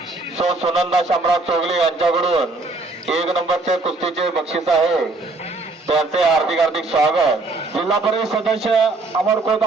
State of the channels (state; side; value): quieter; left; 3.3 dB